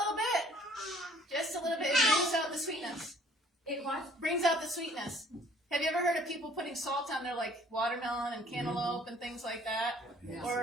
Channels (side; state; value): both; normal; correlation 0.57